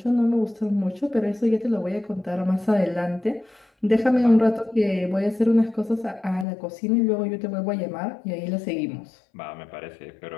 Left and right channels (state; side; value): drops out; right; at 6.5 s